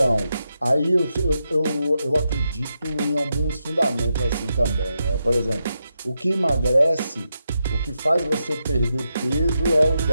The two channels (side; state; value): both; inverted; correlation -0.86